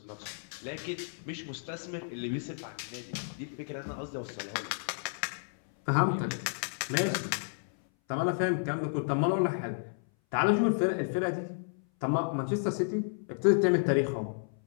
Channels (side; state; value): right; silent; 56 dB below the other